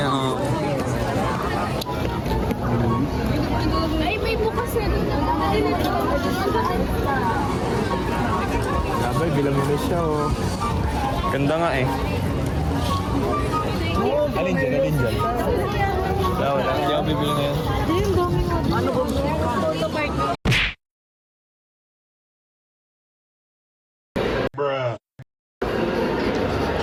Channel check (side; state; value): both; identical; correlation 1.00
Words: Ay, may bukas na rin. Sabay, bilang mo na siya, oh. Ganda nga eh. Alin dyan? Wala. Hindi ako bibili ngayon. Ano ba?